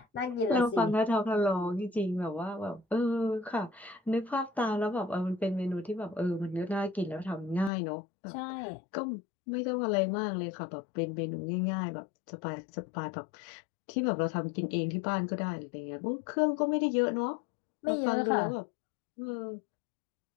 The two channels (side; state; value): right; drops out; at 7.7 s